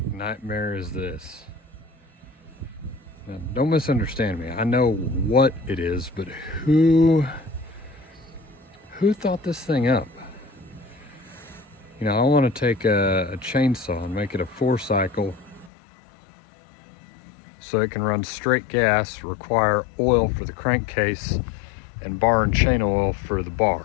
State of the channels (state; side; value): drops out; right; at 15.7 s